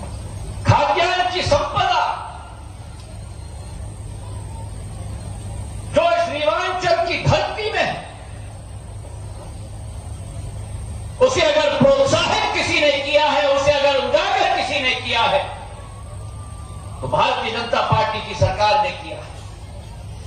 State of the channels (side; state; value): both; identical; correlation 1.00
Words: खाद्यान्न की संपदा जो इस रीवांचल की धरती में है, उसे अगर प्रोत्साहित किसी ने किया है, उसे अगर उजागर किसी ने किया है, तो भारतीय जनता पार्टी की सरकार ने किया है।